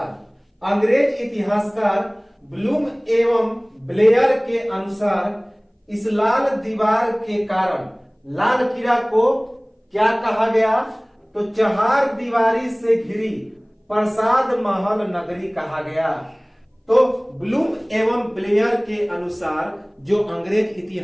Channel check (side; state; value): both; identical; correlation 1.00